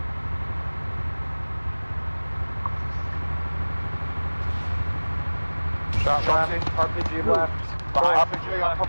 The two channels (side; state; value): both; inverted; correlation -1.00